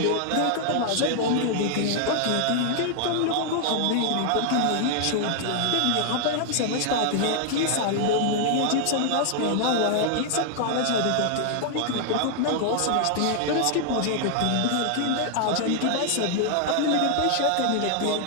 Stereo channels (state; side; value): different; both; correlation 0.00